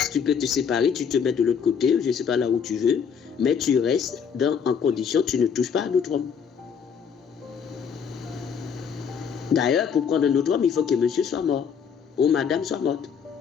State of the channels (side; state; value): right; quieter; 6.9 dB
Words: Tu peux te séparer, tu te mets de l'autre côté, je ne sais pas là où tu veux, mais tu restes en condition, tu ne touches pas à un autre homme. D'ailleurs, pour prendre un autre homme, il faut que monsieur soit mort, ou madame soit morte.